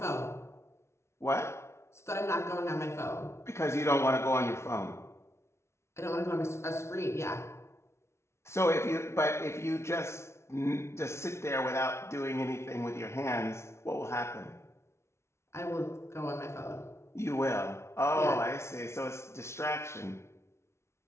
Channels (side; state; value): right; late; 0.13 ms